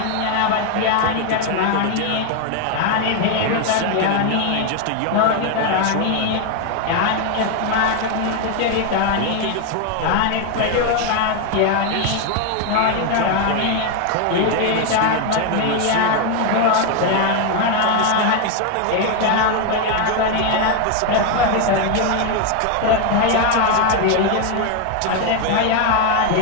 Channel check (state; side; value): different; both; correlation 0.01